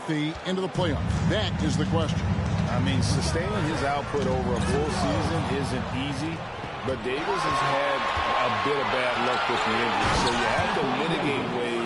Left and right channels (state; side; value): identical; both; correlation 1.00